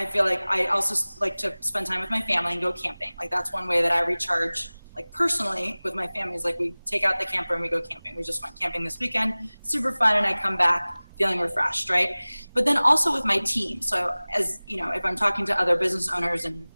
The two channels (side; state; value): both; inverted; correlation -1.00